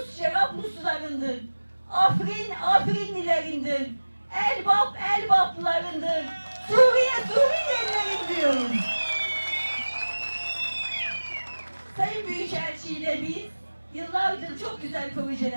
Cerabluslarındır. Afrin, Afrinlilerindir. Elbap, Elbaplarındır. Suriye, Suriyelilerin diyoruz. Sayın Büyükelçi ile biz yıllardır çok güzel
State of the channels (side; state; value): both; inverted; correlation -1.00